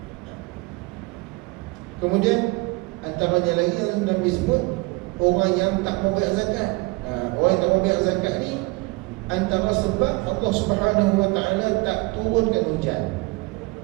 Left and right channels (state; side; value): quieter; left; 25.2 dB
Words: Kemudian antaranya lagi yang Nabi sebut, orang yang tak mau bayar zakat. Orang yang tak mau bayar zakat ni, antara sebab Allah Subhanahu Wa Taala tak turunkan hujan.